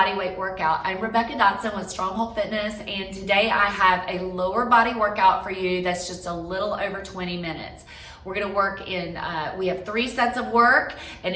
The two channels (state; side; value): identical; both; correlation 1.00